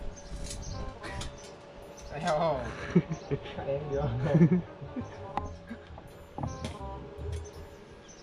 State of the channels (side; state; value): both; identical; correlation 1.00